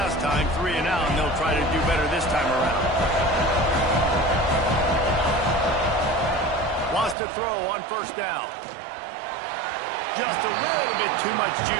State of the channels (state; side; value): drops out; left; at 7.2 s